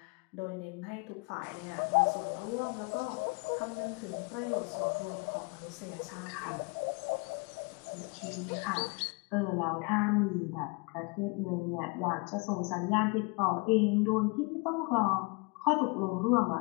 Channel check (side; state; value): right; quieter; 30.4 dB